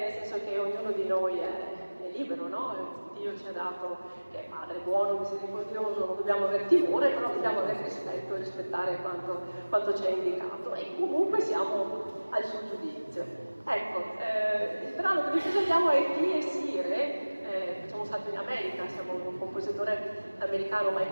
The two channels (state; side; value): inverted; both; correlation -1.00